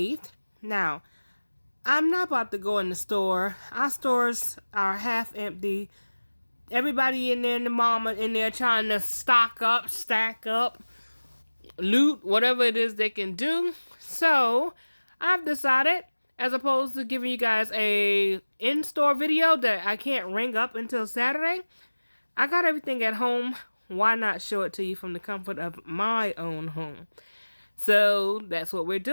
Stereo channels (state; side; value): inverted; both; correlation -1.00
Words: Now, I'm not about to go in the store. Our stores are half empty. Everybody in there and the mama in there trying to stock up, stack up, loot, whatever it is they can do. So, I've decided, as opposed to giving you guys a in-store video that I can't ring up until Saturday, I got everything at home. Why not show it to you from the comfort of my own home? So, that's what we're